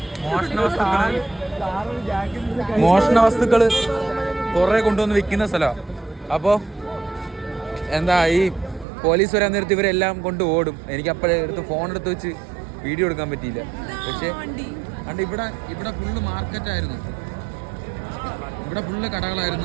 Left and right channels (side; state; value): left; drops out; at 8.8 s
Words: മോഷണ വസ്തുക്കള് കുറെ കൊണ്ടുവന്ന് വിൽക്കുന്ന സ്ഥലമാണ്. അപ്പോൾ എന്താ ഈ പോലീസ് വരാൻ നേരത്ത് ഇവരെല്ലാം കൊണ്ട് ഓടും. എനിക്ക് അപ്പോഴേ ഫോൺ എടുത്ത് വെച്ച് വീഡിയോ എടുക്കാൻ പറ്റിയില്ല. പക്ഷേ കണ്ട് ഇവിടെ ഫുള്ള് മാർക്കറ്റായിരുന്നു. ഇവിടെ ഫുള്ള്